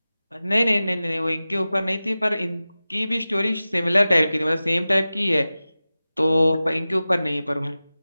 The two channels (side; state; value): both; inverted; correlation -0.96